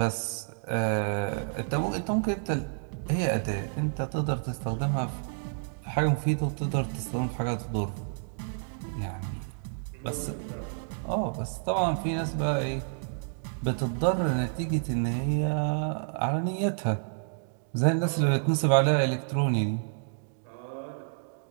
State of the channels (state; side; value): silent; left; digital silence